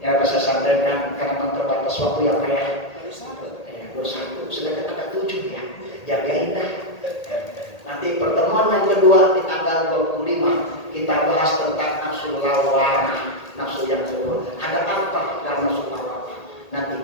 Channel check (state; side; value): late; right; 1.8 ms